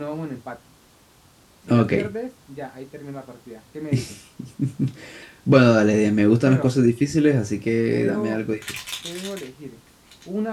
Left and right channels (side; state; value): both; identical; correlation 1.00